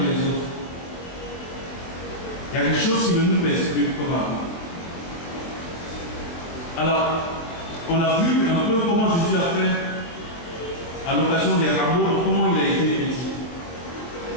les autres. Il y a quelque chose qui ne nous pèse plus comme avant. Alors, on a vu un peu comment Jésus a fait à l'occasion des rameaux, comment il a été petit.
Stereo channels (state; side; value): late; right; 23 ms